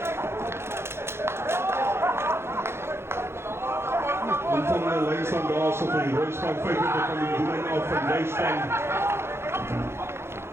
En van de lijnstaan daar zo van die Royspan 25 van die doelijn af van Nijspan.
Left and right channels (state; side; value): late; left; 0.12 ms